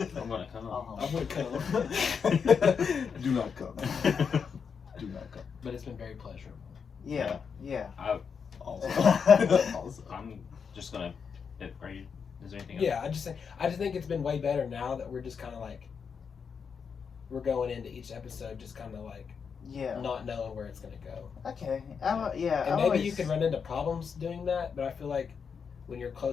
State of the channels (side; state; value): right; quieter; 6.3 dB